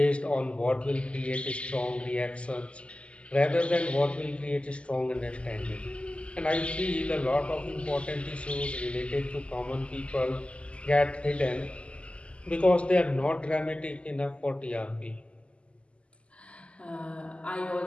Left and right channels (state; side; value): late; right; 0.057 ms